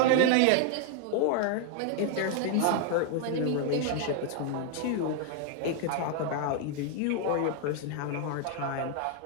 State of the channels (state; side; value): different; both; correlation 0.00